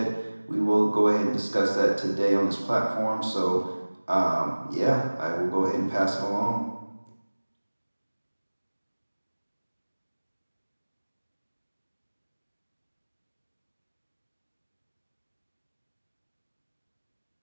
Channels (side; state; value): both; inverted; correlation -1.00